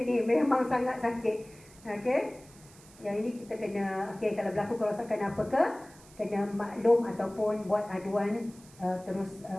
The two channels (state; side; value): noise; right; hiss, 24 dB below the sound